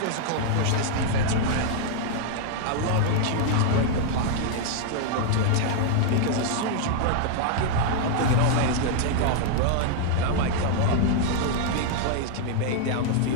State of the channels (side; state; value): both; different; correlation 0.00